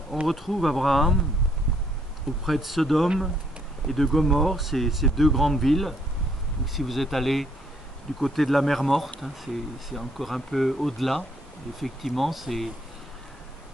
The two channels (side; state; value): both; normal; correlation 0.69